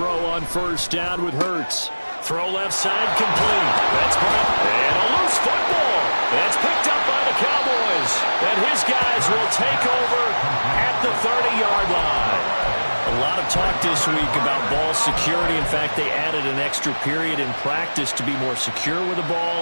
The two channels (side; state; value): both; inverted; correlation -1.00